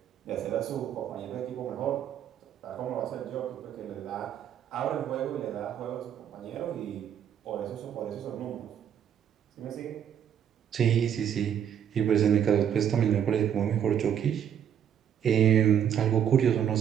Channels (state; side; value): quieter; left; 9.1 dB